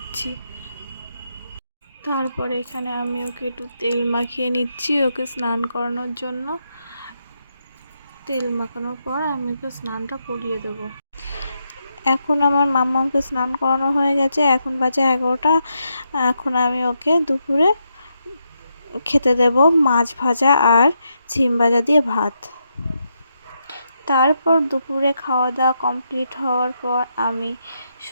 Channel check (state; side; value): inverted; both; correlation -0.82